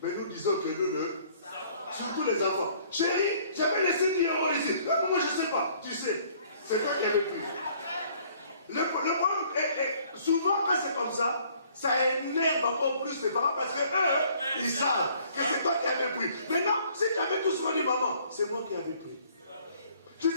Mais nous disons que nous le... Surtout les enfants. Chérie, j'avais laissé 10 € ici. Ah, moi, je ne sais pas. Tu sais, c'est toi qui avais pris. Le problème est, souvent, quand c'est comme ça énerve encore plus les parents parce qu'eux, ils savent que c'est toi qui avais pris. Maintenant, si tu avais tout ce qu'on dit, maman, c'est moi qui avais pris. Tu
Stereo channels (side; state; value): both; inverted; correlation -0.59